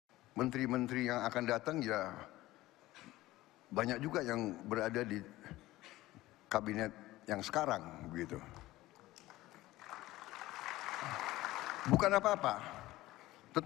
menteri-menteri yang akan datang, ya banyak juga yang berada di kabinet yang sekarang begitu. Bukan apa-apa,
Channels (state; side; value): quieter; right; 17.3 dB